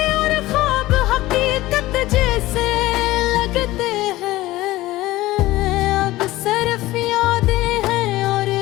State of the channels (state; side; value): quieter; right; 17.5 dB